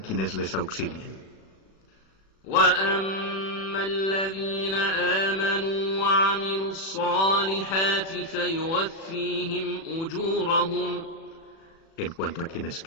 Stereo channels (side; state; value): right; late; 36 ms